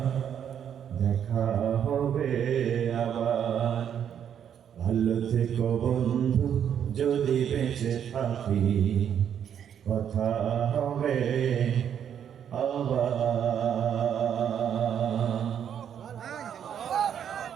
দেখা হবে আবার। ভালো থেকো বন্ধু, যদি বেঁচে থাকি, কথা হবে আবার।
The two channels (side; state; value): left; quieter; 8.8 dB